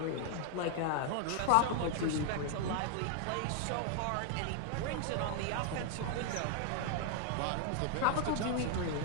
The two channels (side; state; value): both; different; correlation 0.00